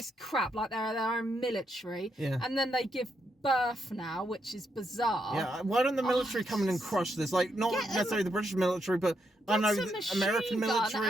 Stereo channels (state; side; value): normal; both; correlation 0.80